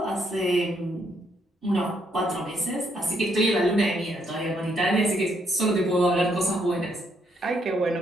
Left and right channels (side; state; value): both; normal; correlation 0.74